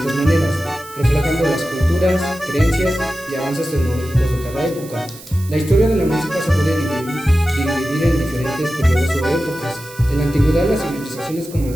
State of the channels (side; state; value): right; noise; hiss, 18 dB below the sound